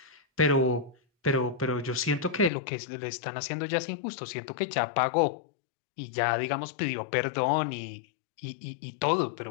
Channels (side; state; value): right; drops out; at 2.5 s